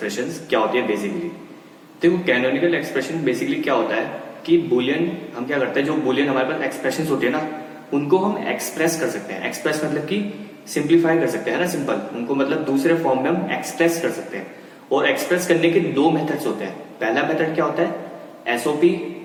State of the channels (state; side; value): identical; both; correlation 1.00